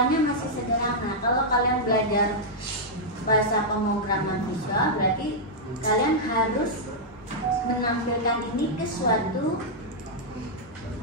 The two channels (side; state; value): both; normal; correlation -0.06